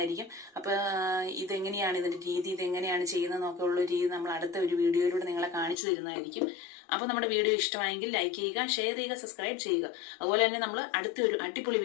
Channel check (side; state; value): right; drops out; at 5.8 s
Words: അപ്പൊ ഇതെങ്ങനെയാണ് ഇതിന്റെ രീതി, ഇതെങ്ങനെയാണ് ചെയ്യുന്നതെന്നൊക്കെ ഉള്ള രീതി നമ്മൾ അടുത്ത ഒരു വീഡിയോയിലൂടെ നിങ്ങളെ കാണിച്ചു തരുന്നതായിരിക്കും. അപ്പൊ നമ്മുടെ വീഡിയോ ഇഷ്ടമായെങ്കിൽ ലൈക്ക് ചെയ്യുക, ഷെയർ ചെയ്യുക, സബ്സ്ക്രൈബ് ചെയ്യുക. അതുപോലെ തന്നെ നമ്മൾ അടുത്ത ഒരു അടിപൊളി